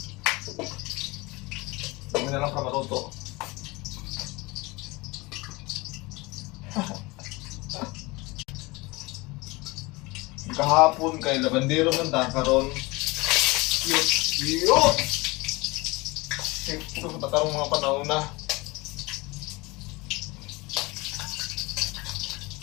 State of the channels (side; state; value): right; quieter; 23.7 dB